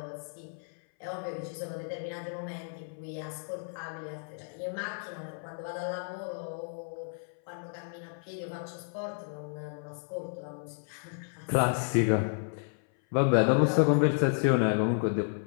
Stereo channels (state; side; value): silent; right; 56 dB below the other